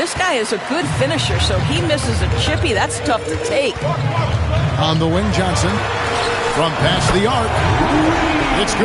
guy is a good finisher, so he misses a chippy. That's tough to take. On the wing, Johnson. From past the arc. It's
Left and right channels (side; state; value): both; identical; correlation 1.00